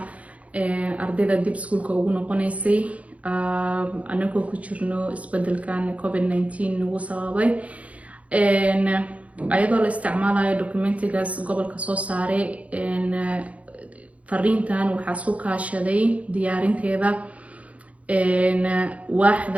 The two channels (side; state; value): left; late; 0.066 ms